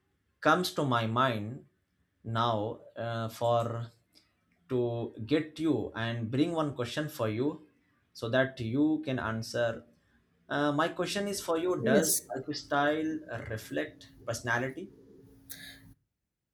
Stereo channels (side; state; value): both; identical; correlation 1.00